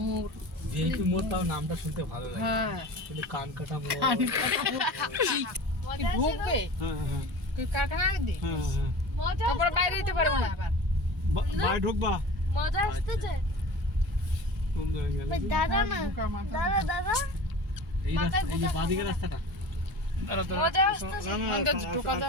ভিআইপি মোড়, তাও নামটা শুনতে ভালো লাগে। হ্যাঁ কিন্তু কানকাটা মোড় কি ঢুকবে হ্যাঁ হ্যাঁ তুই কারখানা দি হ্যাঁ হ্যাঁ তারপর বাইরে যেতে পারবো না আবার বাইরে ঢুকবা মজা আসতেছে কোন জায়গায় গেলে দাদা না দাদা দাদা এই রাস্তা, এই যে বাঁদিকে রাস্তাটা মজা আসতেছে অন্তত ঢোকা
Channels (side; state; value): both; normal; correlation 0.36